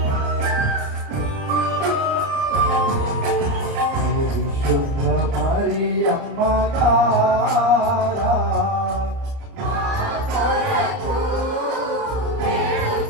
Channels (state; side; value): late; left; 29 ms